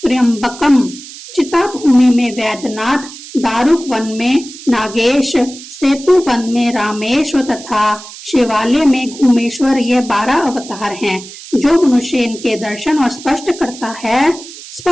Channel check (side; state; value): right; noise; hiss, 15 dB below the sound